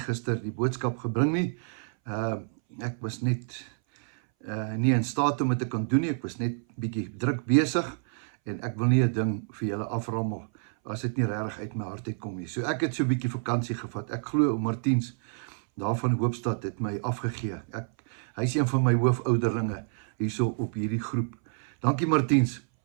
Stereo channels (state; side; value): silent; left; 59 dB below the other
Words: die boodskap gebring nie. Ek was net nie in staat om dit te kan doen nie. Ek was net bietjie druk besig en ek wil nie 'n ding vir julle aframmel as dit nie regtig uit my hart uitkom nie. So ek het so 'n bietjie vakansie gevat. Ek glo ou Martiens daar van Hoopstad het my afgegee. Hy is een van my hoofouderlinge hierso op hierdie groep. Dankie Martiens,